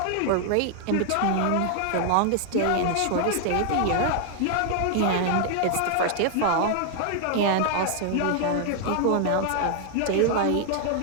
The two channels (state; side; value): different; both; correlation 0.00